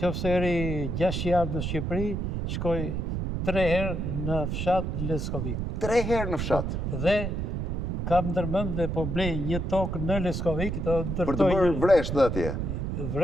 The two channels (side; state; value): right; noise; rumble, 2 dB below the sound